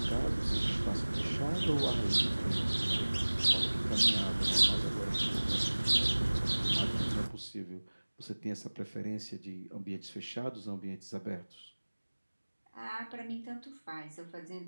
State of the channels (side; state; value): both; inverted; correlation -1.00